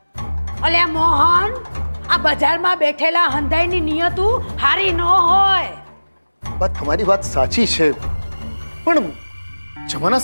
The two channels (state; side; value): inverted; both; correlation -1.00